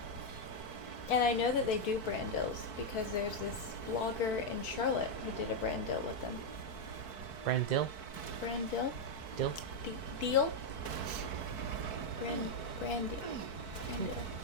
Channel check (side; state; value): right; late; 4.6 ms